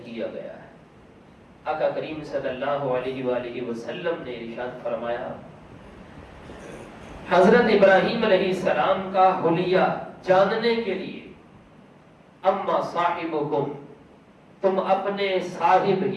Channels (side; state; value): both; identical; correlation 1.00